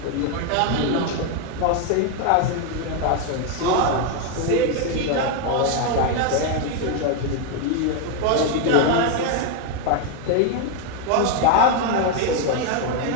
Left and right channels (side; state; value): both; different; correlation 0.01